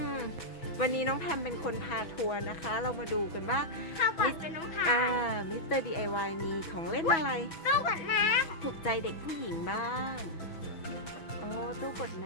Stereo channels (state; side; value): late; right; 6.1 ms